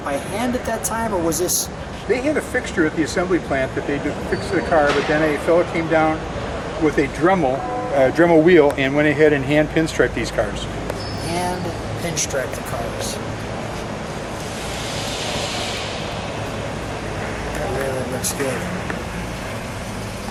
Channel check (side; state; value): both; identical; correlation 1.00